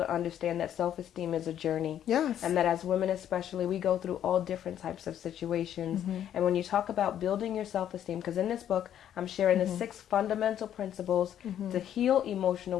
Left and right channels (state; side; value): quieter; right; 10.4 dB